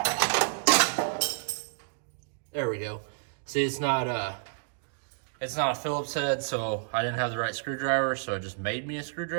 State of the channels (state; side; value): silent; left; digital silence